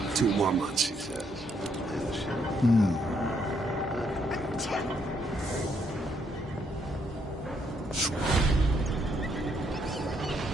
Two more months, he says.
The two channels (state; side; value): normal; both; correlation 0.73